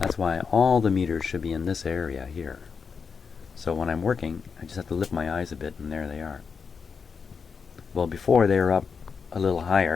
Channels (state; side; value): quieter; right; 5.8 dB